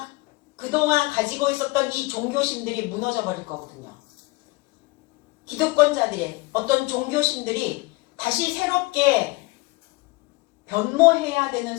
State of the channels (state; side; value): quieter; right; 23.8 dB